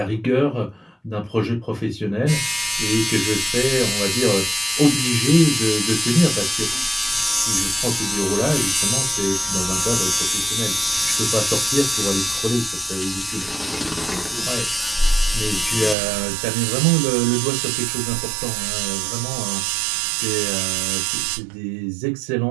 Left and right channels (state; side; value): drops out; left; at 16.0 s